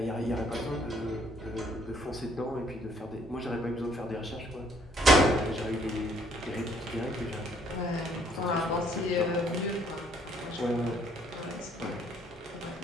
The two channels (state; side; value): normal; both; correlation 0.64